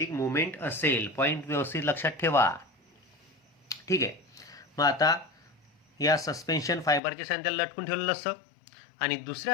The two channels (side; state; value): right; drops out; at 7.0 s